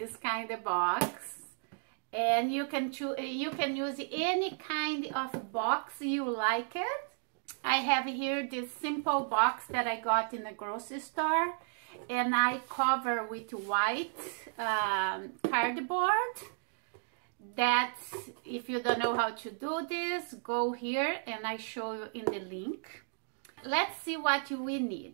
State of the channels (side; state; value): left; silent; digital silence